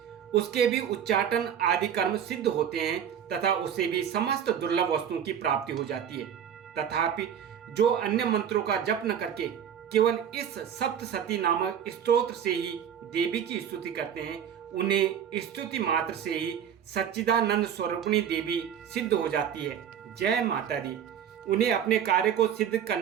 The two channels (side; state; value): left; quieter; 8.9 dB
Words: उसके भी उच्चाटन आदि कर्म सिद्ध होते हैं तथा उसे भी समस्त दुर्लभ वस्तुओं की प्राप्ति हो जाती है। तथापि जो अन्य मंत्रों का जप न करके केवल इस सप्तसती नामक स्तोत्र से ही देवी की स्तुति करते हैं, उन्हें स्तुति मात्र से ही सच्चिदानंद स्वरूपिणी देवी सिद्ध हो जाती है। जय माता दी। उन्हें अपने कार्य को सिद्ध